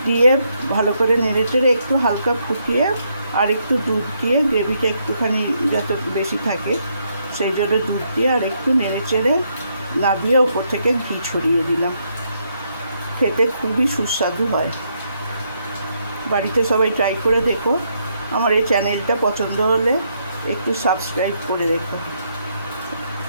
দিয়ে ভালো করে নেড়েচেড়ে একটু হালকা ফুটিয়ে আর একটু দুধ দিয়ে, গ্রেভিটা একটুখানি যত বেশি থাকে সেই জন্য দুধ দিয়ে আর একটু নেড়েচেড়ে নামিয়ে ওপর থেকে ঘি ছড়িয়ে দিলাম। খেতে খুবই সুস্বাদু হয়। বাড়িতে সবাই ট্রাই করে দেখো। আমার এই চ্যানেলটা পছন্দ হলে একটু সাবস্ক্রাইব করে রেখো।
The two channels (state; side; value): inverted; both; correlation -0.76